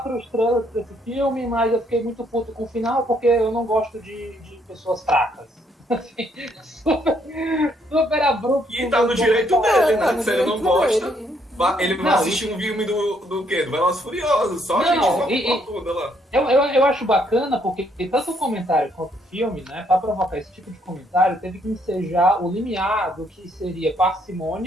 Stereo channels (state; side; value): normal; both; correlation 0.70